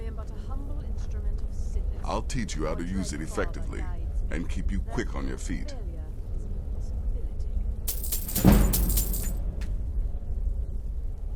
am but a humble instrument of sickness. I'll teach you how to use it effectively, and keep you quick on your feet.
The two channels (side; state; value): both; identical; correlation 1.00